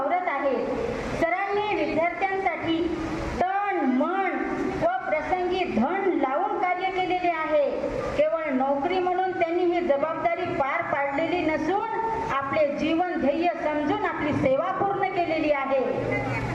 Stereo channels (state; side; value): identical; both; correlation 1.00